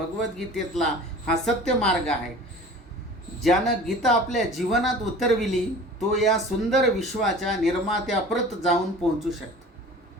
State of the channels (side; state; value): both; normal; correlation 0.42